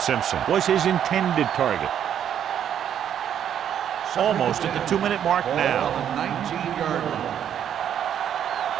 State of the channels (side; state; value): left; quieter; 9.5 dB